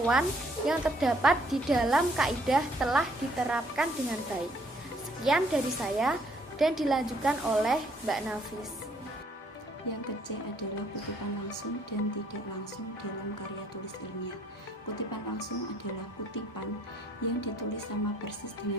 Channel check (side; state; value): both; normal; correlation 0.65